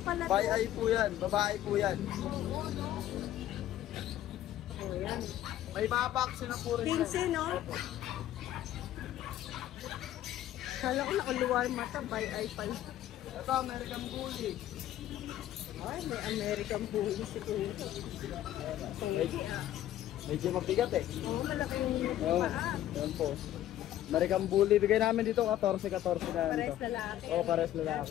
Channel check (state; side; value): quieter; right; 12.8 dB